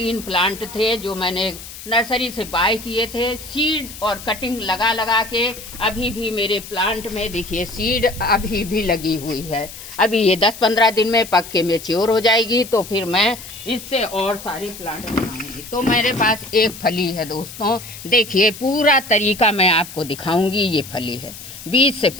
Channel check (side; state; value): left; noise; hiss, 14 dB below the sound